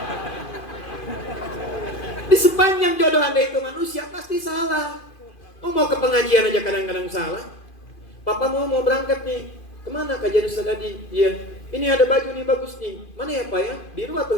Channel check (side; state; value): right; late; 2.5 ms